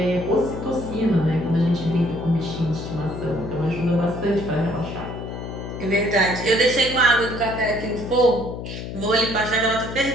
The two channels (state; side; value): noise; left; hum, 8 dB below the sound